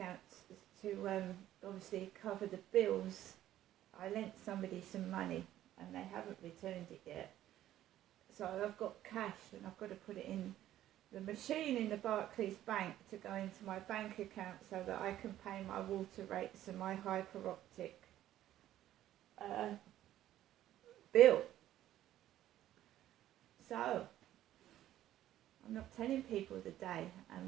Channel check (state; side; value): quieter; left; 13.0 dB